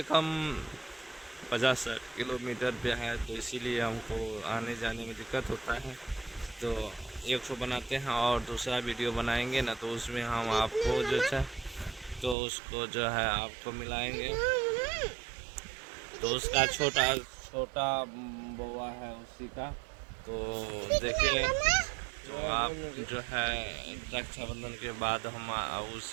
कम 50-60 किलोमीटर पे है, तो इसीलिए हमको आने जाने में दिक्कत होता है। तो एक ठो बनाते हैं और दूसरा वीडियो बनाएंगे ना, तो उसमें हम आपको जो है तो उसको जो है आपको मिलाएंगे। तो उसका छोटा बउआ है उसी का, तो देखिए तो आप जो है रक्षाबंधन के बाद हम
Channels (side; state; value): left; drops out; at 12.4 s